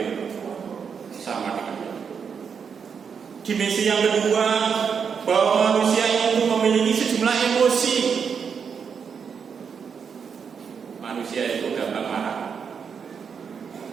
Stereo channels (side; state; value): left; quieter; 6.5 dB